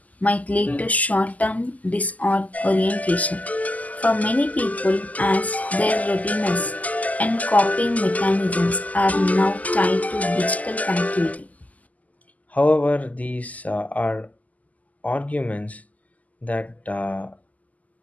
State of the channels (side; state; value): right; late; 0.076 ms